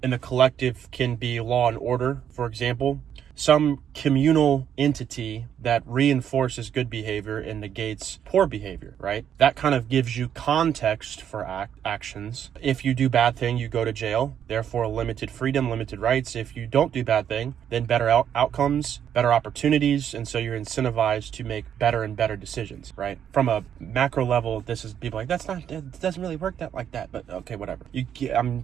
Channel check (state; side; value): quieter; left; 9.1 dB